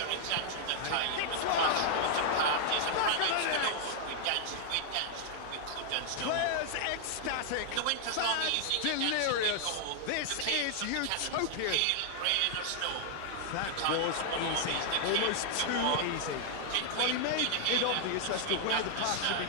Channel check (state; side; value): different; both; correlation -0.01